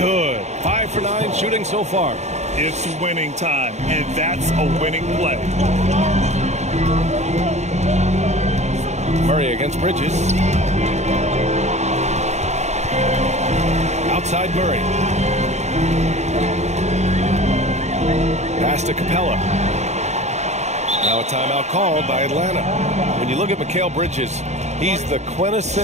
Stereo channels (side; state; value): left; late; 0.33 ms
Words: 5 for 9 shooting so far. It's winning time, and that's a winning play. Murray against Bridges. Outside Murray. Pass to Capella. Now a timeout called by Atlanta. When you look at Mikal Bridges, he's the